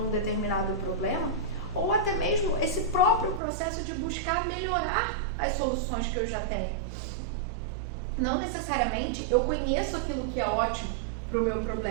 um determinado problema, ou até mesmo esse próprio processo de buscar melhorar as soluções que eu já tenho. Não necessariamente eu conheço aquilo que é ótimo para o meu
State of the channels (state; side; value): drops out; left; at 3.4 s